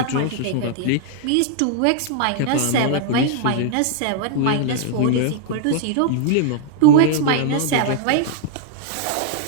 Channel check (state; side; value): different; both; correlation -0.01